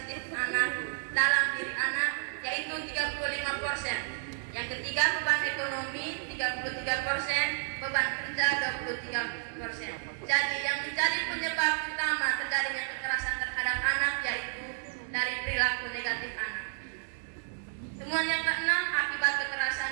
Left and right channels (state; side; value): silent; left; 57 dB below the other